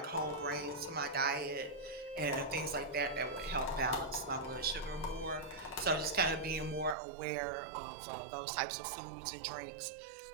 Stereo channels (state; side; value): drops out; left; at 7.0 s